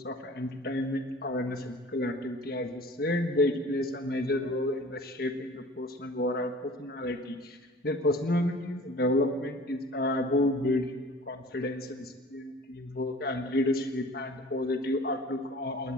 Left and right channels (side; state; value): both; normal; correlation 0.45